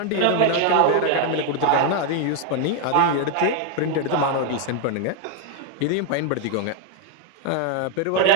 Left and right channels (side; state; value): both; different; correlation 0.01